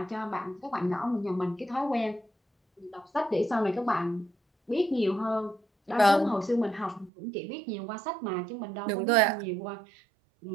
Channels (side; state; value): left; drops out; at 7.1 s